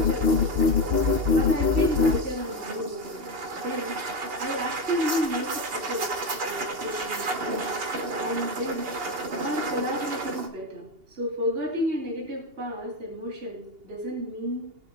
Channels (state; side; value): late; left; 2.8 ms